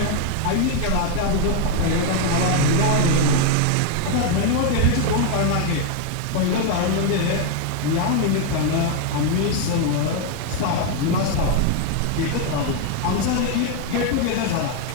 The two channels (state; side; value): different; both; correlation 0.01